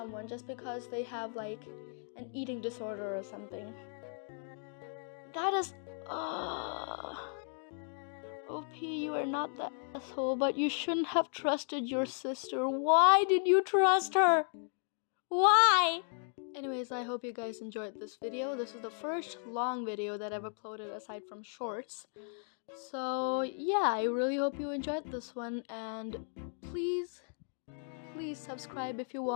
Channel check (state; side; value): silent; right; 54 dB below the other